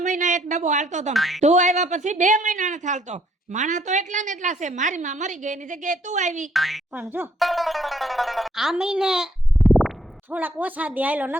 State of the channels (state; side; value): normal; both; correlation 0.67